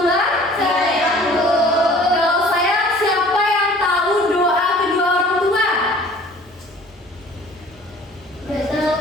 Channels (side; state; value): both; normal; correlation 0.50